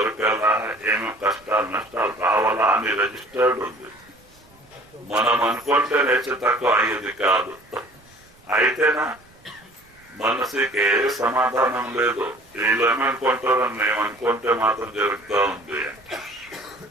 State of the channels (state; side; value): noise; right; rumble, 29 dB below the sound